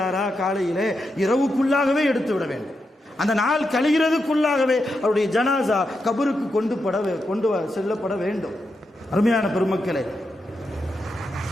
காலையிலே இரவுக்குள்ளாகவே எடுத்து விட வேண்டும். அந்த நாள் கழிகிறதுக்குள்ளாகவே அவருடைய ஜனாசா கபருக்கு கொண்டு செல்லப்பட வேண்டும். அருமையான பெருமக்களே,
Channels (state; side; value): normal; both; correlation 0.86